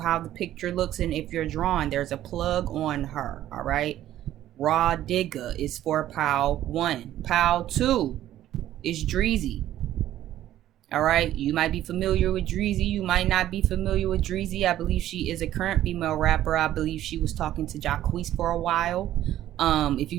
the picture looks, and if you're drawn, there's a plug on her. All right, Raw Digger is for pile one. Pile two is Dreezy. All right, you might be familiar with Dreezy, you might not be familiar with Dreezy. I believe she is a current female rapper. I believe she was talking to Jacquees for a while. If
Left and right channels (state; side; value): quieter; left; 12.9 dB